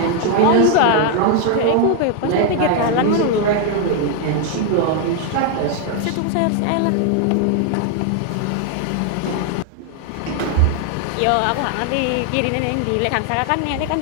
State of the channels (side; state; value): both; different; correlation 0.00